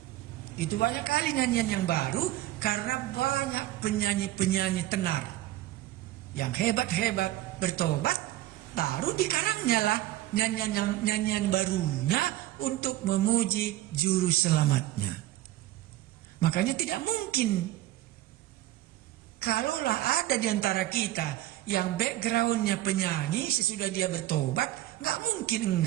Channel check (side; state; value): left; quieter; 15.1 dB